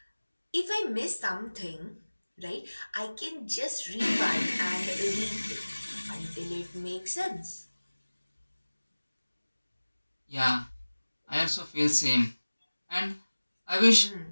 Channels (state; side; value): inverted; both; correlation -1.00